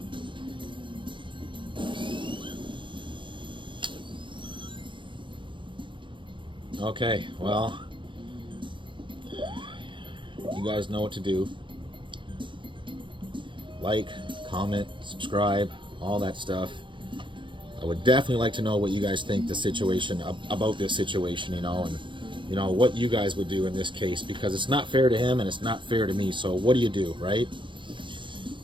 Okay, well, you guys know what to do. Like, comment, subscribe, all that stuff. I would definitely like to know what you guys think about this situation, you know, and you know what you guys would do in this case, because it's not fair to him and it's not fair to me. So what do you do, right?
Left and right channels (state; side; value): late; left; 0.24 ms